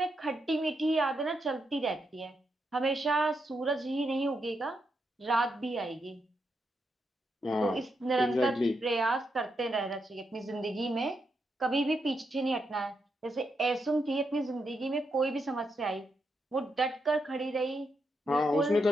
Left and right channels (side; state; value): both; normal; correlation 0.82